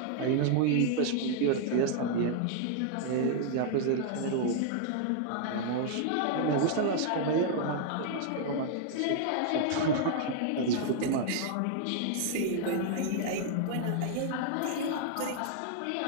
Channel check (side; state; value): both; different; correlation -0.01